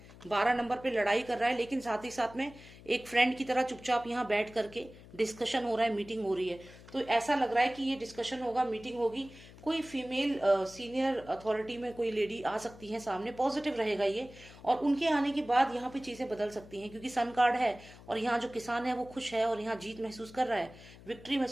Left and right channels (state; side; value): noise; left; hum, 19 dB below the sound